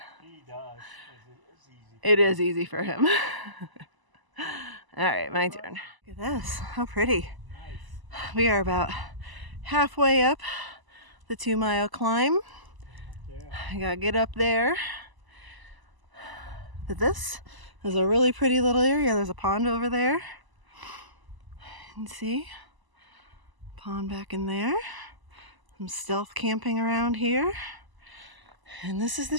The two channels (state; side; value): late; left; 1.0 ms